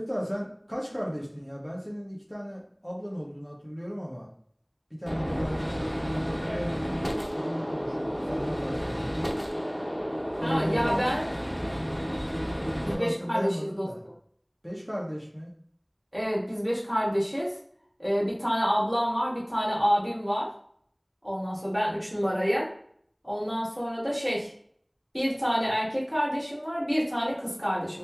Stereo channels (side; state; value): both; identical; correlation 1.00